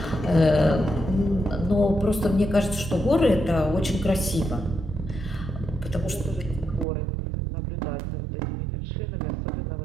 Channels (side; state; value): left; drops out; at 6.9 s